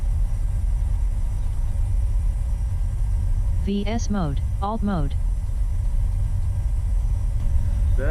VS mode, alt mode,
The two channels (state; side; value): identical; both; correlation 1.00